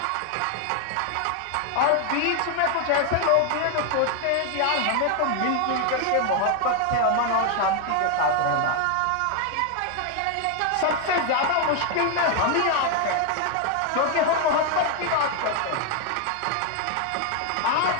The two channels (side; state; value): both; different; correlation 0.01